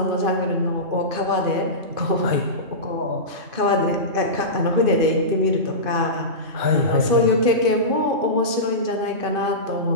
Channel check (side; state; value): left; late; 2.5 ms